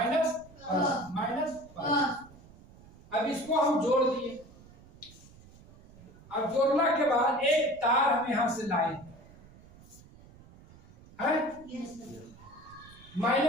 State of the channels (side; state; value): right; noise; rumble, 23 dB below the sound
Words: प्लस माइनस प्लस। अब इसको हम जोड़ दिए। अब जोड़ने के बाद एक तार हम यहां से लाए हैं,